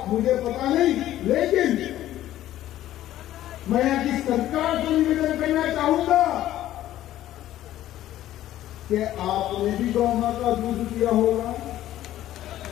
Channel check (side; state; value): right; quieter; 13.4 dB